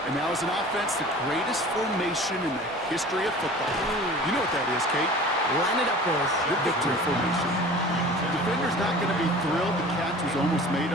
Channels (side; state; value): both; normal; correlation 0.42